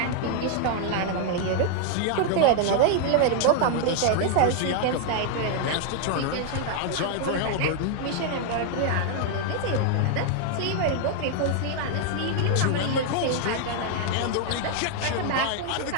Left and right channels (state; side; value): different; both; correlation 0.00